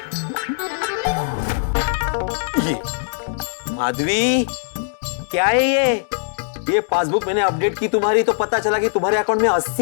ये माधवी, क्या है ये पासबुक मैंने अपडेट की तुम्हारी तो पता चला कि तुम्हारे अकाउंट में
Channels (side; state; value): right; silent; digital silence